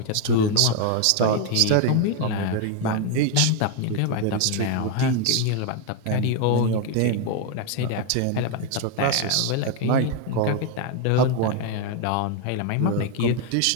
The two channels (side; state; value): both; different; correlation 0.01